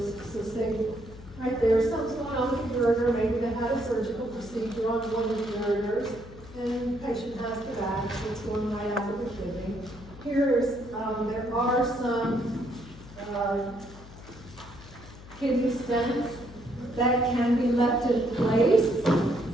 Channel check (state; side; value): noise; left; hum, 18 dB below the sound